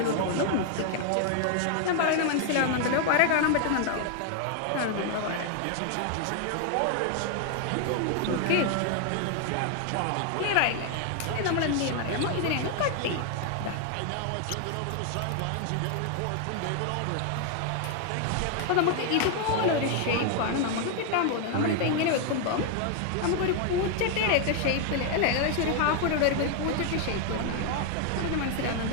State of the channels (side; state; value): both; different; correlation 0.00